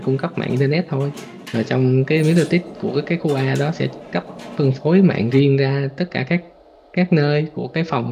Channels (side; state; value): both; identical; correlation 1.00